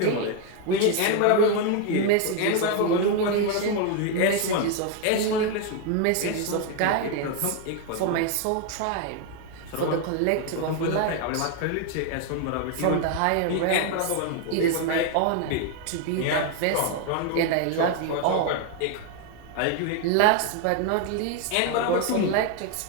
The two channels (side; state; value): both; different; correlation 0.01